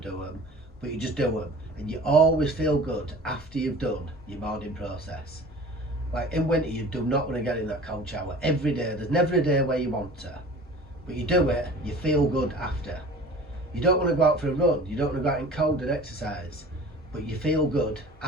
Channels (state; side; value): normal; both; correlation 0.42